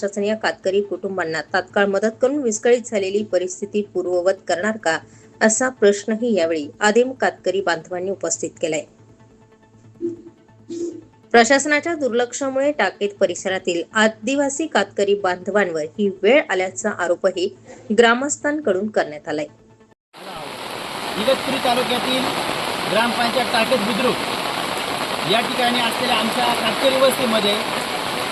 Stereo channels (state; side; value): identical; both; correlation 1.00